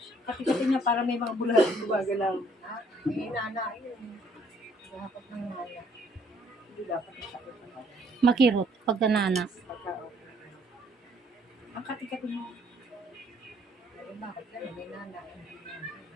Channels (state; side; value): normal; both; correlation 0.63